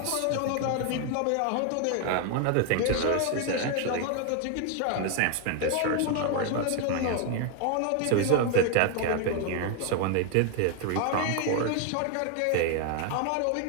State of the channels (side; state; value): both; different; correlation 0.01